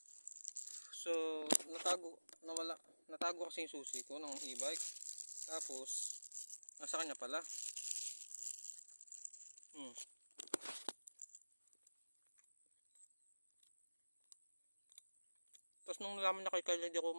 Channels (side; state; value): both; inverted; correlation -1.00